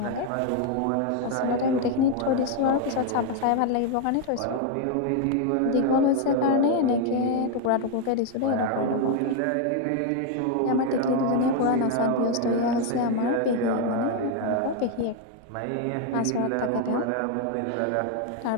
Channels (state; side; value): different; both; correlation 0.01